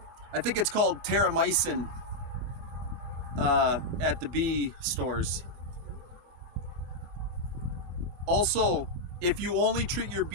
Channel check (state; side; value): late; left; 24 ms